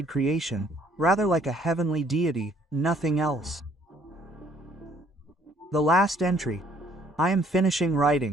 creation, rather like a heavenly deity, nothing else. The last entry. I am finishing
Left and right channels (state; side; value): normal; both; correlation 0.62